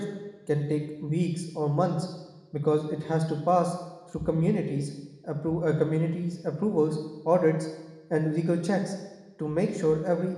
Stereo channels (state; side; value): identical; both; correlation 1.00